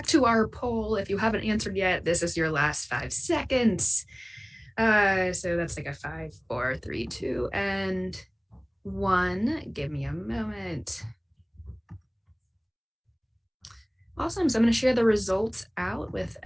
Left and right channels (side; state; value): both; identical; correlation 1.00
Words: to our poll. If you haven't answered yet, this is your last 5 seconds. So that's like a 5, 4, 3, 2, and 1. Give me a moment. Awesome. So I'm going to share the results out with